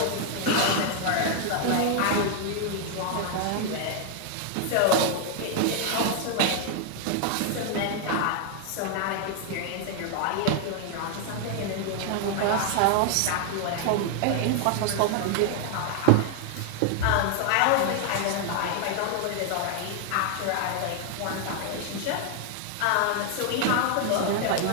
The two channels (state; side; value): different; both; correlation 0.00